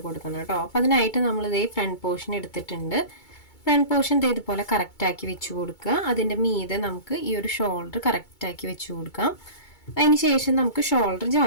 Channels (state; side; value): late; right; 2.3 ms